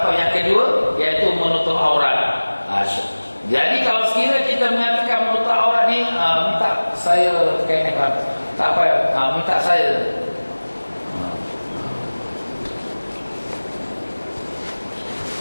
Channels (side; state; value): both; inverted; correlation -1.00